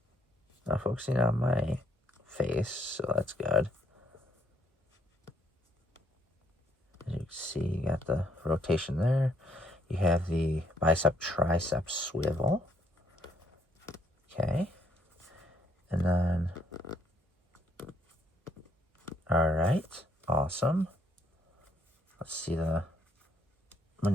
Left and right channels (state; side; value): normal; both; correlation 0.68